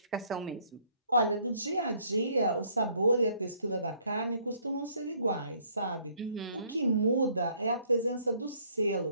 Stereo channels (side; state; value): both; inverted; correlation -0.63